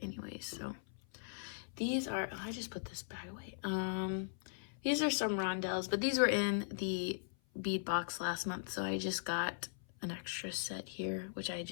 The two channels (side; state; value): right; silent; 52 dB below the other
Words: anyways. So these are, oh, I just put this bag away. These are some rondelles, but these were in the bead box last month, so I just got an extra set here, which I